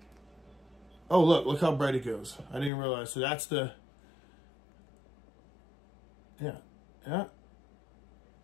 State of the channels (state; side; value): drops out; right; at 2.7 s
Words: Oh, look how bright it goes. I didn't realize. So that's the, yeah.